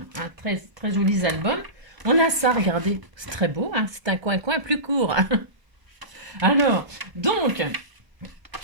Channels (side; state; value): left; late; 1.2 ms